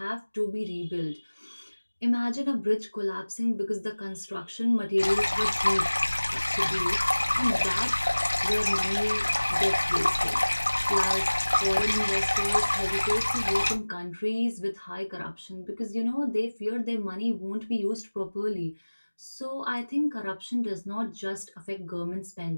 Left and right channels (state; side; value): inverted; both; correlation -1.00